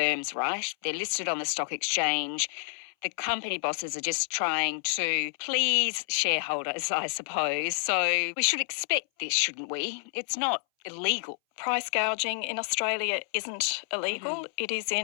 right? They're listed on the stock exchange. The company bosses are just trying to please shareholders, I suppose. So we should expect this, shouldn't we? It's not illegal. Price gouging in Australia isn't illegal. It is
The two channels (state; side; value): silent; right; 59 dB below the other